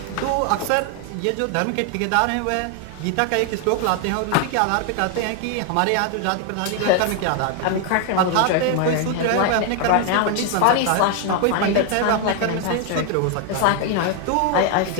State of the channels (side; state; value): both; different; correlation 0.00